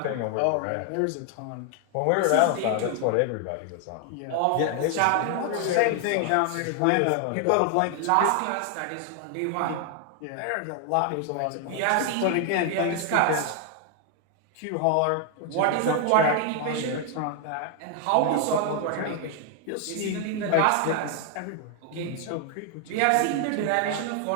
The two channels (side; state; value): both; different; correlation 0.00